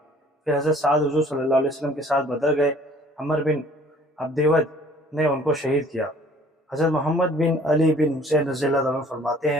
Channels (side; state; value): both; normal; correlation 0.54